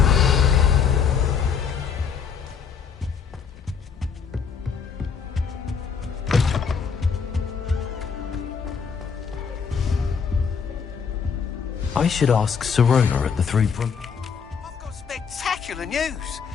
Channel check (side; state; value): right; quieter; 6.4 dB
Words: I should ask Sirona at the Three Broom... I've got spectacular the news.